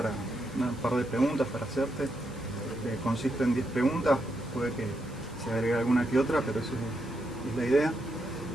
un par de preguntas para hacerte. Consiste en 10 preguntas, puede que se agregue alguna que otra, pero eso es la idea.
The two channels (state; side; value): noise; right; hiss, 25 dB below the sound